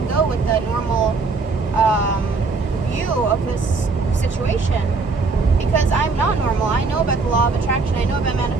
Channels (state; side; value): quieter; left; 4.1 dB